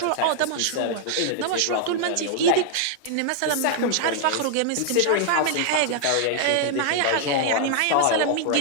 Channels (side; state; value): both; different; correlation -0.01